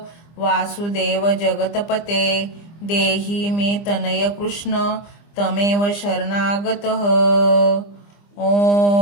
वासुदेव जगतपते देहि मे तनय कृष्ण तमेव शरणागतः।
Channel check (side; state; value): right; late; 25 ms